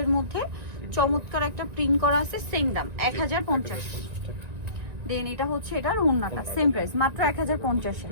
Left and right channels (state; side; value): late; left; 1.9 ms